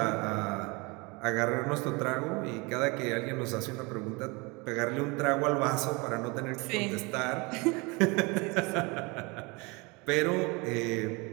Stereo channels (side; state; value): left; quieter; 27.2 dB